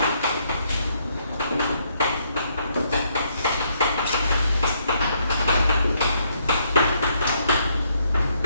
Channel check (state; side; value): inverted; both; correlation -0.72